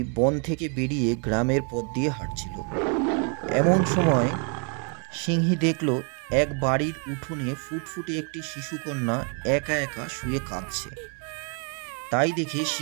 বন থেকে বেরিয়ে গ্রামের পথ দিয়ে হাঁটছিল। এমন সময় সিংহী দেখল এক বাড়ির উঠোনে ফুটফুটে একটি শিশুকন্যা একা একা শুয়ে কাঁদছে। তাই দেখে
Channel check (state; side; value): quieter; left; 40.0 dB